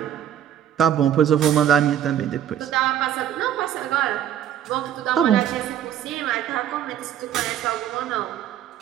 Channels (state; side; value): quieter; left; 10.4 dB